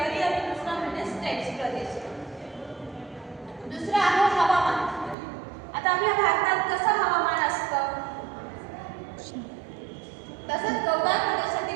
आणि दुसरा म्हणजे स्टेप्स प्रदेश. दुसरं आहे हवामान. आता आपल्या भारतात कसं हवामान असतं, तसंच गवताळ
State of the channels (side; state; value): left; drops out; at 5.2 s